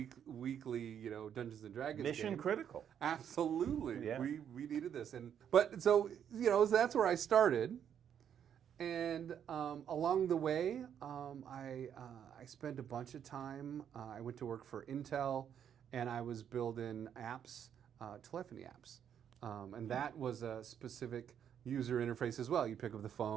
weekly, Dungeons and Dragons Mission game. critical. Absolutely, Yeah. we needed this, but so that's where I started, and along the way, I spent a bunch of time. I went to work for Intel, and I was building apps, telephony apps, and that was a specific user interface as well. You pick up the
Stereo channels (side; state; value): left; quieter; 8.8 dB